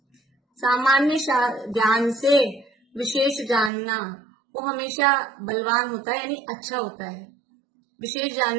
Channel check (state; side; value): drops out; left; at 3.7 s